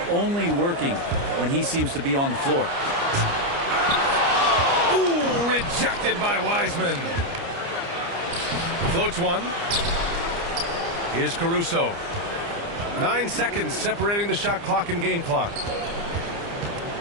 only working when he seems to be on the floor. Ooh, rejected by Wiseman. Floats one. Here's Caruso. 9 seconds separating the shot clock and game clock.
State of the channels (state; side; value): late; left; 29 ms